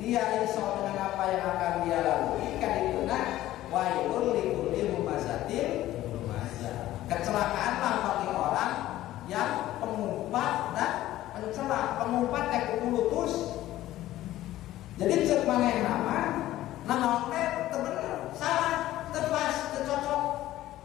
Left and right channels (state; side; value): quieter; right; 14.7 dB